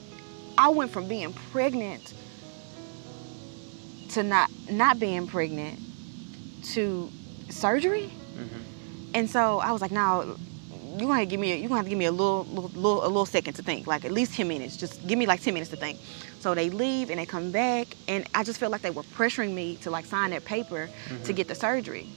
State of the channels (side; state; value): left; silent; digital silence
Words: I went from being pregnant to not being pregnant to surgery. And so I was like, no, you're gonna have to give me a little second to think, like at least 10 minutes. Just give me like 10 minutes to think. So they leave and they come back, and I just felt like they were pressuring me to like sign that paper to get the surgery.